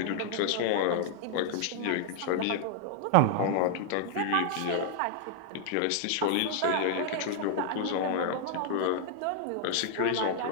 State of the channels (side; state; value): both; different; correlation -0.01